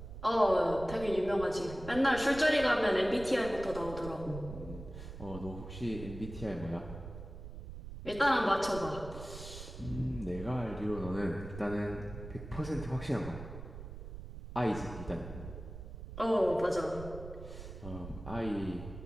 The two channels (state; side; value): noise; right; rumble, 11 dB below the sound